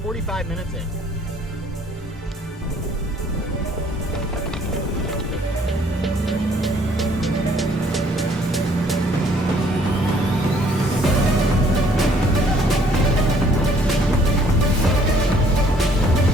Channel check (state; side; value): normal; both; correlation 0.61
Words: 45 minutes in.